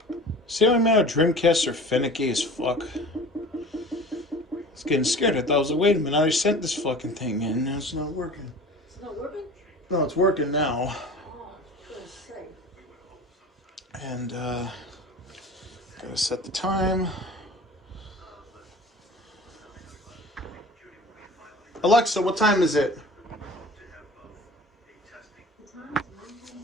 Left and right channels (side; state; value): both; normal; correlation 0.41